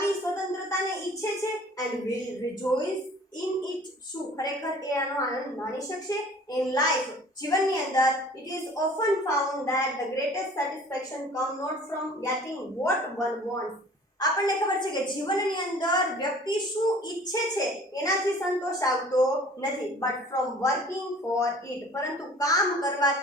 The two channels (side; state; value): both; normal; correlation 0.49